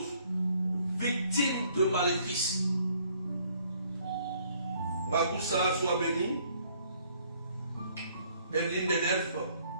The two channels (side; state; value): both; inverted; correlation -0.63